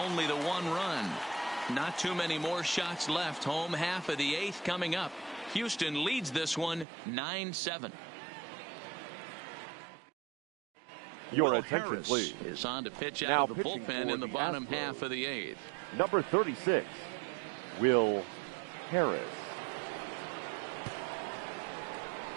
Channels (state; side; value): drops out; left; at 6.9 s